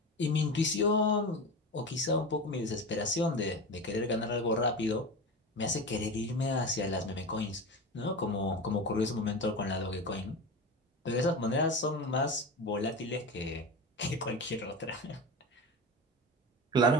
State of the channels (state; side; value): normal; both; correlation 0.26